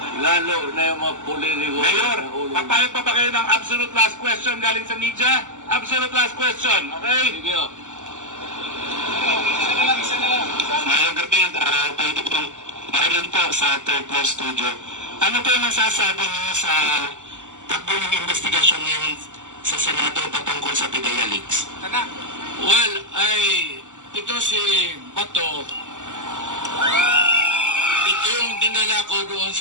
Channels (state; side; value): late; left; 0.86 ms